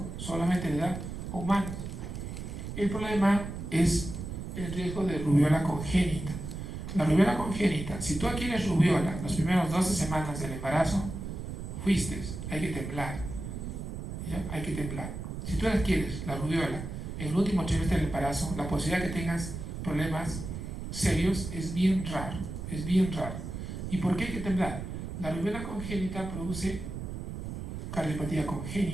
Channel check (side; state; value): right; noise; rumble, 7 dB below the sound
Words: solamente de edad humana. El problema es el riesgo de rubiola congénita. La rubiola congénita, si tú adquieres rubiola las primeras 12 semanas del embarazo, fuiste, hay que temblar. ¿Ya? Hay que temblar. Si tú adquieres la rubiola en el último trimestre del embarazo, la posibilidad de que tengas problemas serios es bien raro. Es bien raro. ¿Y por qué hay que temblar? La rubiola congénita produce cardiopatía